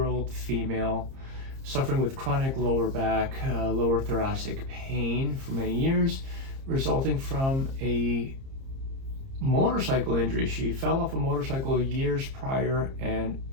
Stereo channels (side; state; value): left; late; 30 ms